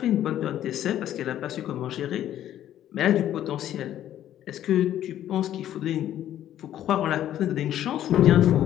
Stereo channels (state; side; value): quieter; right; 11.8 dB